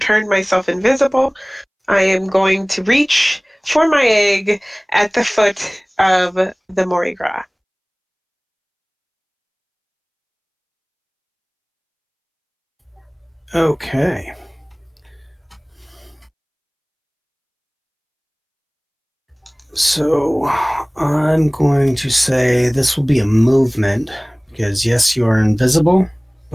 myself invisible, I am going to reach for my egg at the foot of the Mardi Gras. Okay. So I'm going to say this will be a movement because yes, you are invisible,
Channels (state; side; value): identical; both; correlation 1.00